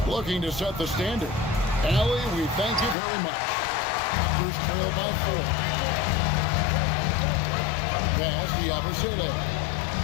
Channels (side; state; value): right; drops out; at 3.0 s